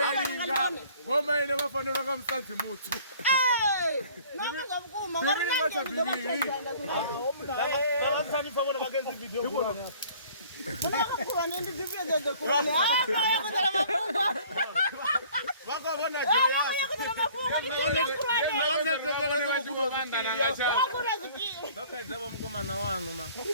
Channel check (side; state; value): both; inverted; correlation -0.52